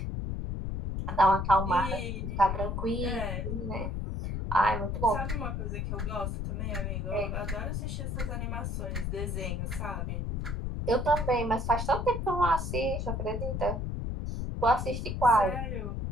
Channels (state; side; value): noise; left; rumble, 2 dB below the sound